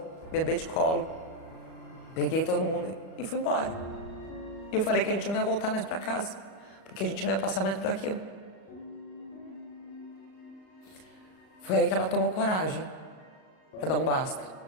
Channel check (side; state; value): right; late; 38 ms